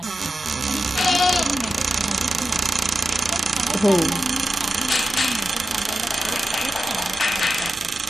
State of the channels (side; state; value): both; normal; correlation 0.91